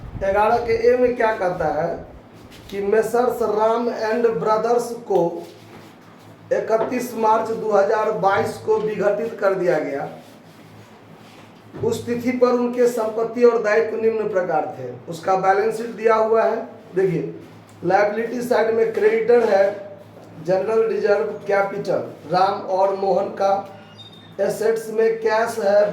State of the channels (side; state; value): both; identical; correlation 1.00